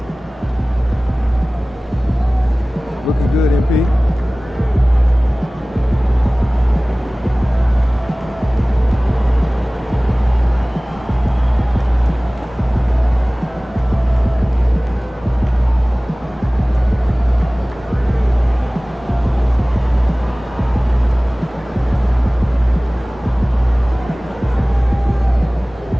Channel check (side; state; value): both; normal; correlation 0.98